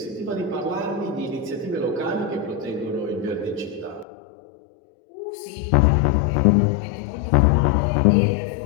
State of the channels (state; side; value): drops out; right; at 4.0 s